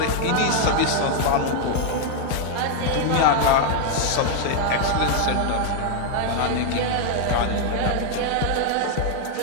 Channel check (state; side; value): different; both; correlation 0.00